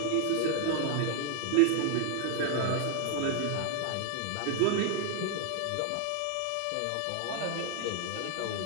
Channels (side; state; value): both; different; correlation 0.00